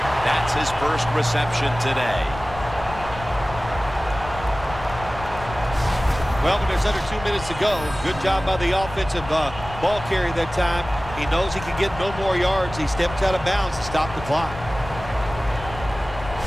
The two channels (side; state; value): left; noise; rumble, 12 dB below the sound